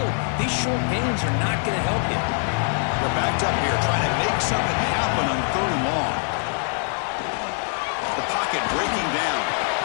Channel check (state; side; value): silent; right; 55 dB below the other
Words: These short gains are not going to help you. They're backed up here, trying to make something happen on third and long. The pocket breaking down.